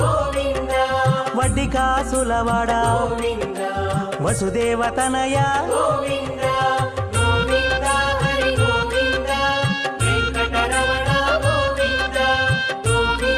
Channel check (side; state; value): both; identical; correlation 1.00